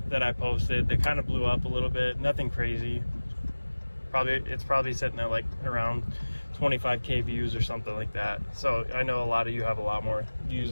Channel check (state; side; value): inverted; both; correlation -1.00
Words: that I posted that kind of blew up a little bit. Nothing crazy. It's probably sitting at like around 25k views or something like that. So I know a lot of you have a lot more